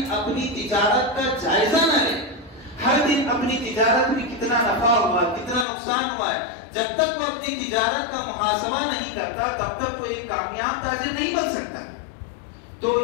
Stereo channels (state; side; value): drops out; right; at 5.7 s